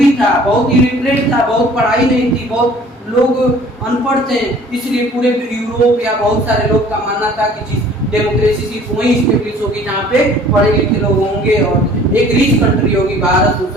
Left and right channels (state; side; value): normal; both; correlation 0.52